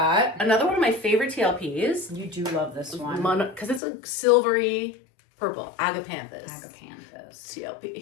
Another one of my favorite TLPs. You do love this one. Because it's a silvery purple. Agapanthus.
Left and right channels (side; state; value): right; drops out; at 3.8 s